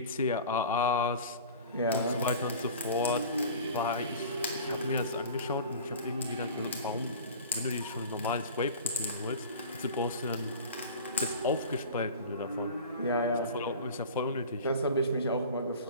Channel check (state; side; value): inverted; both; correlation -0.38